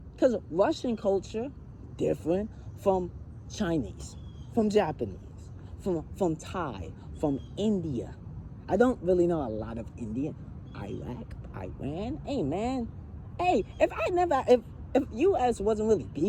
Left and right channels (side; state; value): both; identical; correlation 1.00